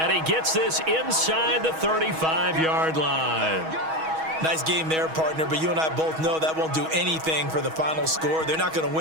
he gets this inside the 35-yard line. Nice game there, partner, but you and I both know that won't do anything for the final score. They're not going to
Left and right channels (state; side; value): late; left; 6.3 ms